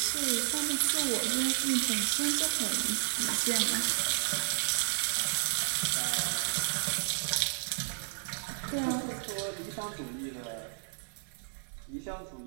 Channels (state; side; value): silent; left; digital silence